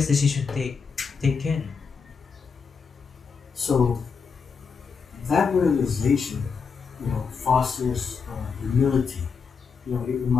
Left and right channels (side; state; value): right; quieter; 5.6 dB